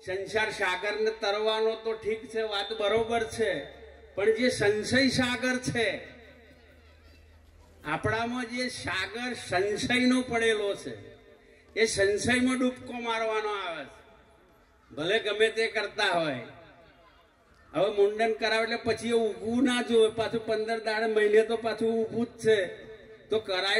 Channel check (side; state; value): both; identical; correlation 1.00